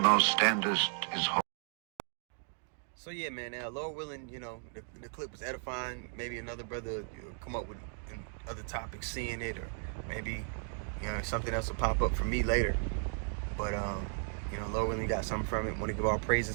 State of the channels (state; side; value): silent; left; 54 dB below the other